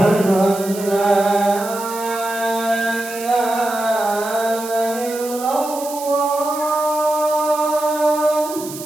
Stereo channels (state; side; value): noise; right; hiss, 12 dB below the sound